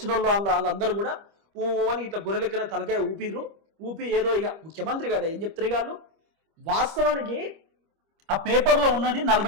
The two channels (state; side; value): late; left; 25 ms